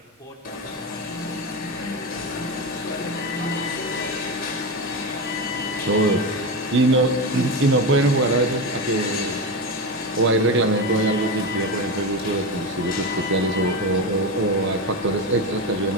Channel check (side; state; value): both; normal; correlation 0.18